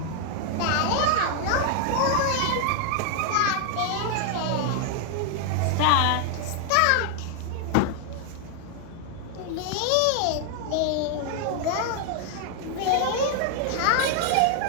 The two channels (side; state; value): both; different; correlation 0.00